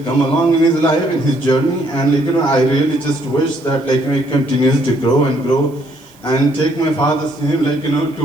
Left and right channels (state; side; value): noise; right; hiss, 29 dB below the sound